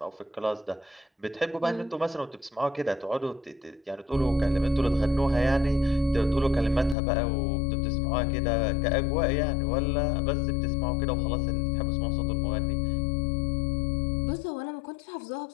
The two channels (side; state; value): right; drops out; at 7.0 s